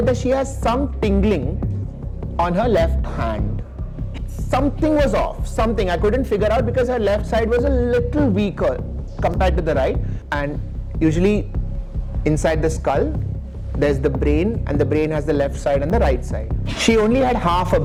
that she has some tingling on her left hand. Something was off, something I couldn't figure out because her left side was a little weaker compared to the right. And usually inside the skull, there's the brain, and the brain has the left side and the right side. She only had half a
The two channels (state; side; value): identical; both; correlation 1.00